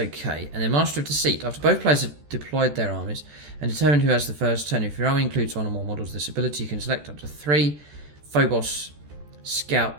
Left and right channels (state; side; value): late; left; 14 ms